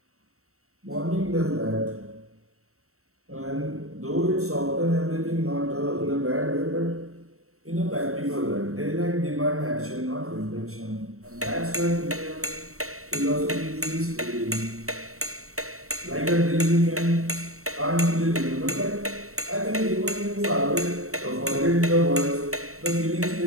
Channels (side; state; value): left; late; 0.64 ms